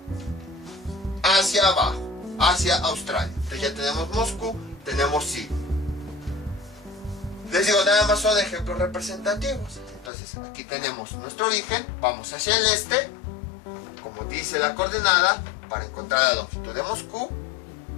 hacia abajo, hacia Australia. Entonces ya tenemos Moscú, tenemos Sydney. Les digo, nada más son ejemplos representativos. Entonces aquí tenemos nuestro origen, vamos hacia el este, como dice la coordenada, para encontrar la longitud de Moscú,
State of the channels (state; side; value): drops out; right; at 10.1 s